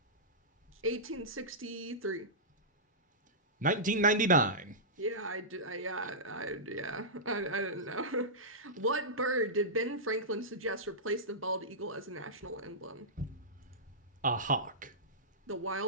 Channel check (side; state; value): both; normal; correlation -0.15